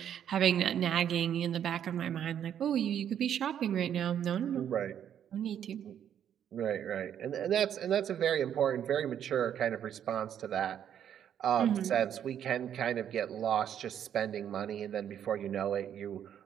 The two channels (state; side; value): quieter; left; 9.5 dB